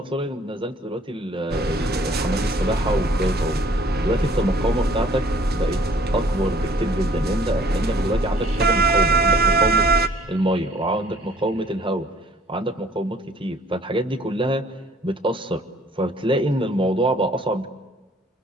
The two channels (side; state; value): both; normal; correlation 0.57